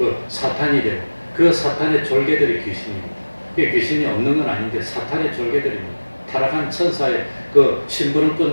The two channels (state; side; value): inverted; both; correlation -1.00